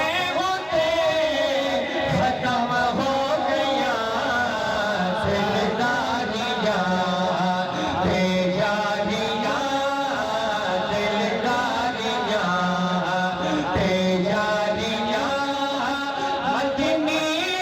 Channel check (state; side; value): identical; both; correlation 1.00